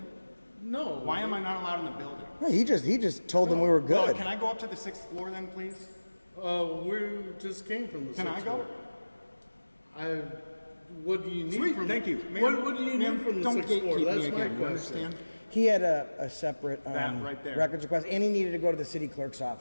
No. Why am I not allowed in the building? he just told them we were Well, good. can I go up to the 6th floor then, please? We just came from the. Can I 6th go? floor. What do you need Sweet, from? thank you. Ma'am, What do you ma'am, need from the don't 6th floor? gatekeep That's me my again, you question. understand? He had a separate That right there. records request, and he needed to go to the city clerk's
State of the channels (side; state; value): both; inverted; correlation -1.00